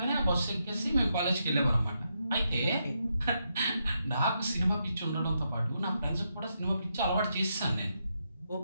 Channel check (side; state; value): both; inverted; correlation -0.82